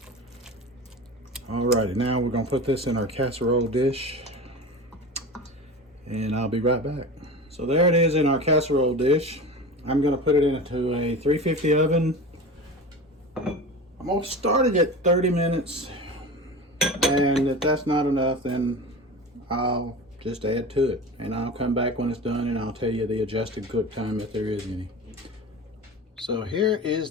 Alrighty, now we're gonna put this in our casserole dish and I'll be right back. So there it is in our casserole dish. I'm gonna put it into a 350 oven. I'm gonna start it at 30 minutes, and if that's not enough, then I'll just add to it, and I'll come back when it's done and I'll tell you the adjusted cook time if there is any. So here is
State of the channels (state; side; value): normal; both; correlation 0.31